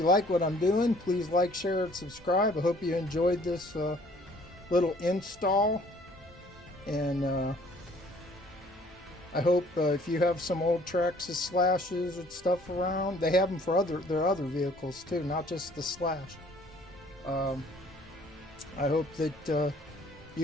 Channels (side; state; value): both; normal; correlation 0.57